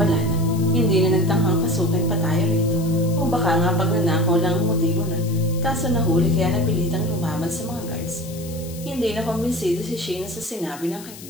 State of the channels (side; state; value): left; noise; hiss, 16 dB below the sound